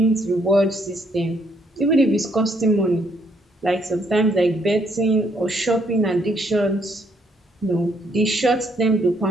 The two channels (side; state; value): both; normal; correlation 0.70